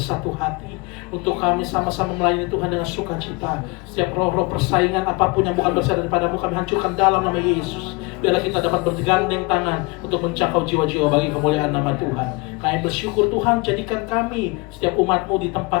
hati untuk kami sama-sama melayani Tuhan dengan sukacita. Setiap roh-roh persaingan apapun yang bukan berasal daripadamu, kami hancurkan dalam nama Yesus. Biarlah kita dapat bergandeng tangan untuk menjangkau jiwa-jiwa bagi kemuliaan nama Tuhan. Kami bersyukur Tuhan, jadikan kami setiap umat-Mu di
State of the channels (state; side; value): quieter; right; 26.7 dB